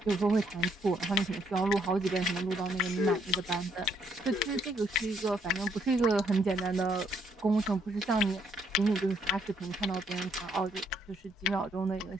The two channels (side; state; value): both; normal; correlation 0.70